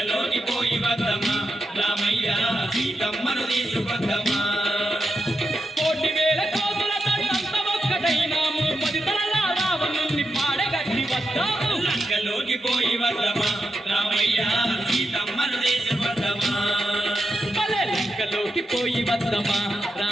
పోయి వద్దమా రామయ్య సీతమ్మను తీసుకొద్దమా కోటి వేల కోతుల దండంత ఒక్కటైనాము 10 తరాల రావణుణ్ణి పాడగట్టి వద్దాము లంకలోకి పోయి వద్దమా రామయ్య సీతమ్మను తీసుకొద్దమా లంకలోకి పోయి వద్దమా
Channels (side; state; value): both; normal; correlation 0.87